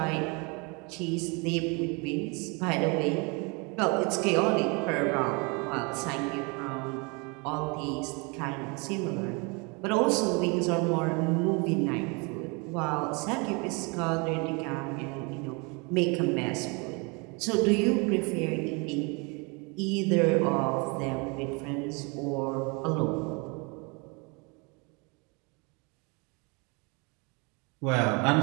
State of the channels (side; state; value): left; quieter; 30.5 dB